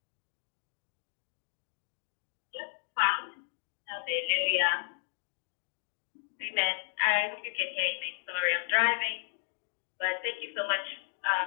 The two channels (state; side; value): silent; right; digital silence